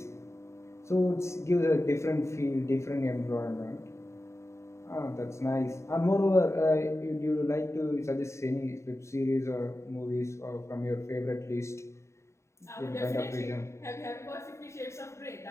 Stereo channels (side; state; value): right; late; 0.14 ms